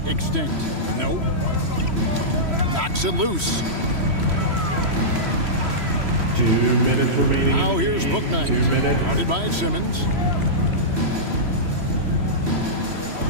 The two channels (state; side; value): late; left; 3.1 ms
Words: extinct. Nope. Knocks it loose. 2 minutes remaining. Now here's Bouknight. 2 minutes. Guarded by Simmons.